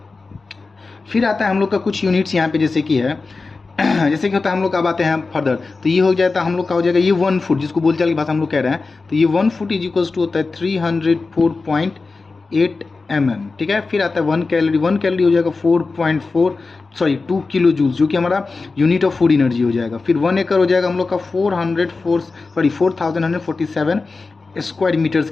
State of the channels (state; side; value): quieter; right; 4.0 dB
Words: फिर आता है हम लोग का कुछ यूनिट्स यहाँ पे, जैसे कि है जैसे कि होता है हम लोग अब आते हैं फर्दर। तो ये हो जाता है हम लोग का हो जाएगा ये 1 फुट, जिसको बोलचाल की भाषा हम लोग कह रहे हैं। तो ये 1 फुट इज इक्वल्स टू होता है 304.8 mm। ठीक है, फिर आता है 1 कैलोरी। 1 कैलोरी हो जाएगा 2 किलो जूल्स, जो कि हमारा यूनिट ऑफ फूड एनर्जी हो जाएगा। फिर 1 एकड़ हो जाएगा हम लोग का 4147 स्क्वायर मीटर्स